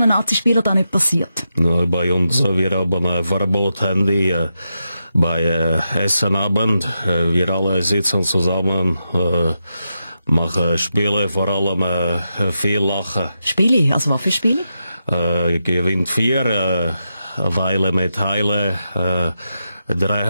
Nazi-Spieler da nicht passiert? Na, bei uns, wir haben ein Verbot Handy bei Essenabend. Wir alle sitzen zusammen, machen Spiele, vor allem viel Lachen. Spiele? Also was für Spiele? Gewinnt 4, eine Weile mit Heile,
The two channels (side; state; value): both; inverted; correlation -0.87